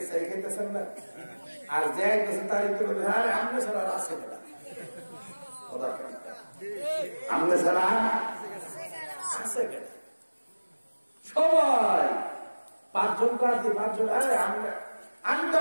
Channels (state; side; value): inverted; both; correlation -1.00